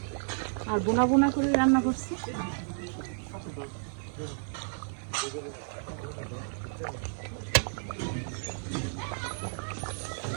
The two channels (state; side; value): silent; left; 57 dB below the other